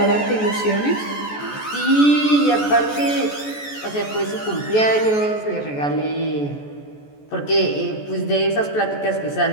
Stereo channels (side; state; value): right; late; 14 ms